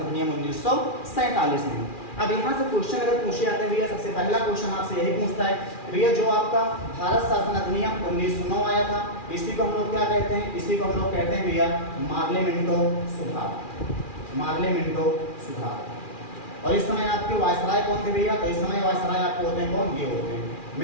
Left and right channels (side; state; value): right; late; 2.4 ms